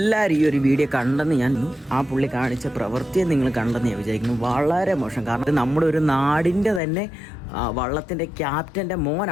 ഈ ഒരു വീഡിയോ കണ്ടെന്ന് ഞാൻ ആ പുള്ളി കാണിച്ച പ്രവൃത്തിയെ നിങ്ങൾ കണ്ടെന്ന് ഞാൻ വിചാരിക്കുന്നു. വളരെ മോശം. കാരണം ഇത് നമ്മുടെ ഒരു നാടിൻ്റെ തന്നെ വള്ളത്തിൻ്റെ ക്യാപ്റ്റൻ്റെ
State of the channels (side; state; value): right; drops out; at 6.8 s